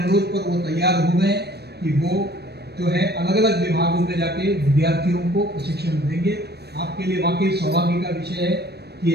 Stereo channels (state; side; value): late; left; 0.47 ms